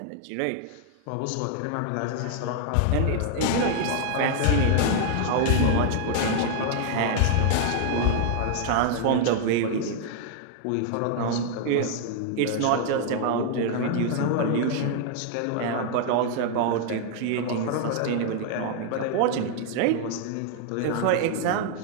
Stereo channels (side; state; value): both; different; correlation 0.00